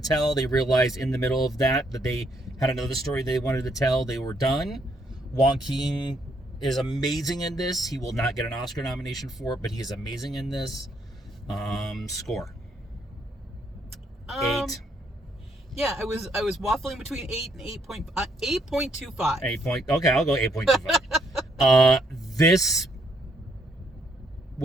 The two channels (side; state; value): both; normal; correlation 0.72